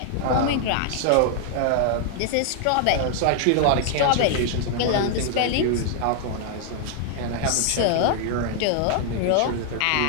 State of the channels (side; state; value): both; different; correlation 0.00